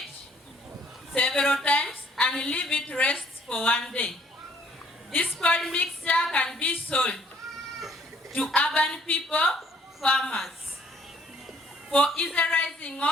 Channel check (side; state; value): both; normal; correlation 0.62